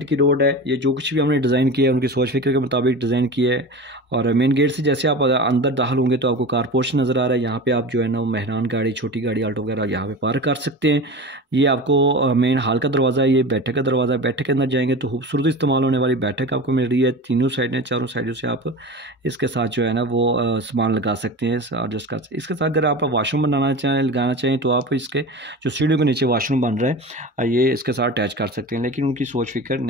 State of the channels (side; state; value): both; normal; correlation 0.31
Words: की रोड है। ये जो कुछ भी हमने डिज़ाइन किया है उनकी सोच फिक्र के मुताबिक डिज़ाइन किया है। और मेन गेट से जैसे आप अंदर दाखिल होंगे तो आपको कार पोर्च नज़र आ रहा है। यहाँ पे आप जो है ना वो मेहरान गाड़ी, छोटी गाड़ी, आल्टो वगैरह यहाँ पे पार्क कर सकते हैं। ये आपको मेन हॉल का दरवाज़ा है। ये बैठक का दरवाज़ा है। बैठक के अंदर जाएंगे तो खूबसूरत इस्तेमाल होने वाली बैठक आपको मिल रही है। तीनों साइडें, चारों साइडों से आप इसके साथ जो है ना वो सामान लगा सकते हैं। और जिसका इसके साथ अगर आप वाशरूम बनाना चाहें, लगाना चाहें तो आप इसके जो सीढ़ियों के नीचे वाशरूम बन रहा है ये इसके साथ अटैच कर सकते हैं। लेकिन उनकी सोच फिक्र